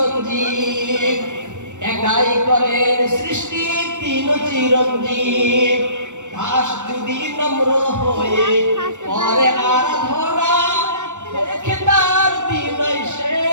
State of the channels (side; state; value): left; late; 0.85 ms